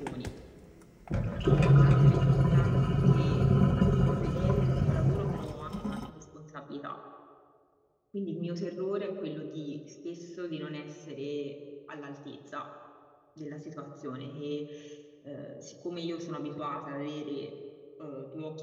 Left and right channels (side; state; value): both; identical; correlation 1.00